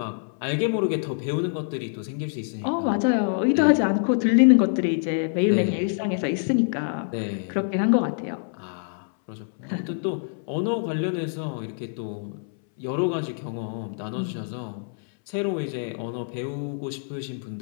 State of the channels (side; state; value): right; silent; 61 dB below the other